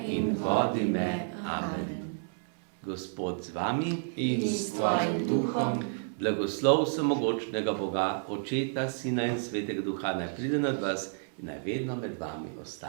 in vodi me. Amen. Gospod z vami In s tvojim duhom. Blagoslov vsemogočnega Boga, Očeta, Sina in Svetega Duha, naj pride nad vas in naj vedno med vami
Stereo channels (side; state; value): left; silent; digital silence